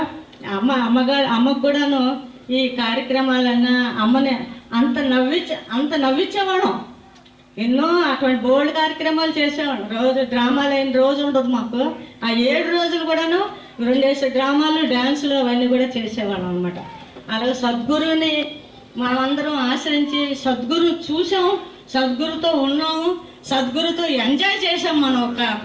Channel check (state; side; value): identical; both; correlation 1.00